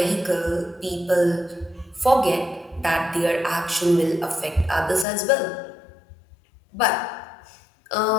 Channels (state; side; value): drops out; right; at 5.1 s